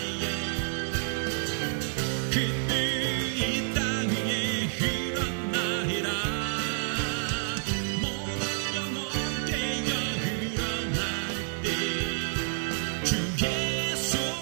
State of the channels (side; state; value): left; silent; 58 dB below the other